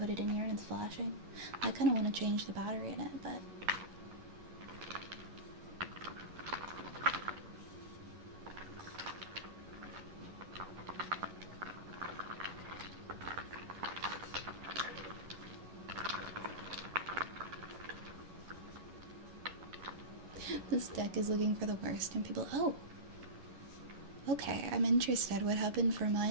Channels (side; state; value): left; late; 11 ms